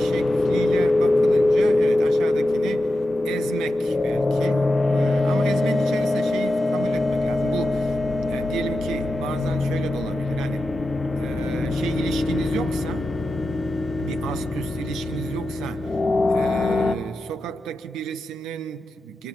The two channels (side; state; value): both; normal; correlation 0.90